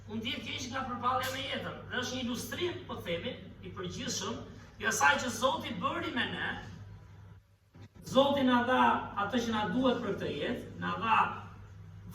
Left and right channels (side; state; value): both; identical; correlation 1.00